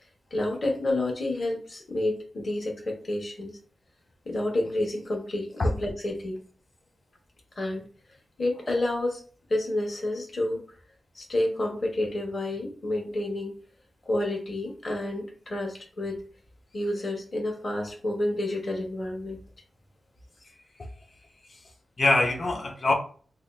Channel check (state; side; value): normal; both; correlation 0.92